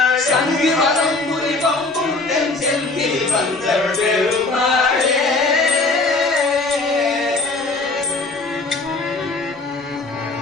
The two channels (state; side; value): quieter; right; 3.4 dB